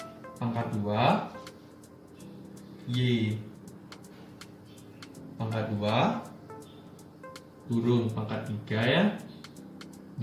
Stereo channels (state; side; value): identical; both; correlation 1.00